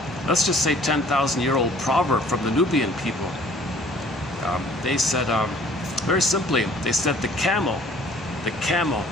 let's just say 10,000-year-old proverb from the Nubian people. They said, very simply, they said the camel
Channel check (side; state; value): both; normal; correlation 0.54